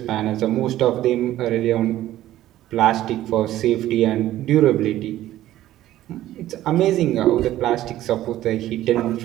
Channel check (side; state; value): left; quieter; 14.0 dB